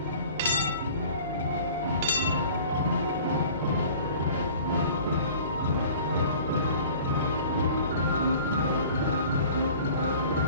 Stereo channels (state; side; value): inverted; both; correlation -0.47